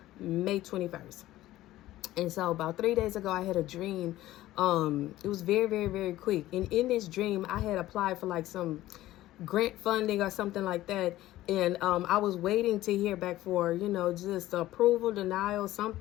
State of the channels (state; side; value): quieter; right; 15.5 dB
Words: May 21st. And so about 3 days ago, I had a dream. It was very, very, very quick. And in this dream, I had applied for like some grant funding or something like that. And I was waiting to hear back for, just approval, denial,